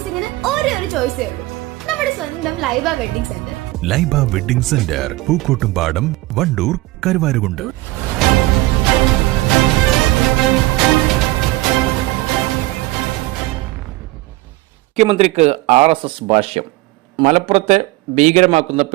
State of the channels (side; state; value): left; quieter; 19.5 dB